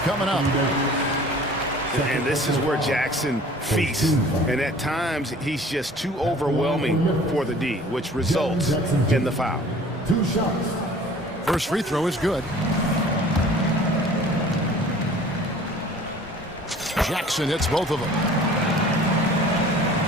up. And this is where Jackson feasts. And at times, he's just too overwhelming for the D, which results in the foul. 2 shots. First free throw is good. Jackson hits both of them.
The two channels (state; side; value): normal; both; correlation 0.48